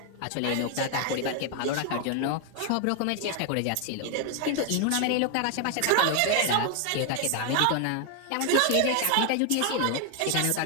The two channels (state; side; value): different; both; correlation 0.00